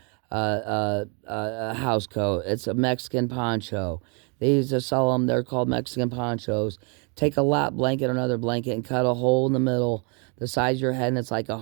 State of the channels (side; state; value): left; quieter; 36.0 dB